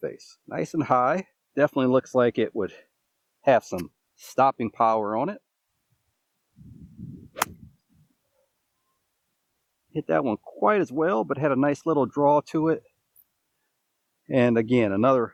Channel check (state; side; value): identical; both; correlation 1.00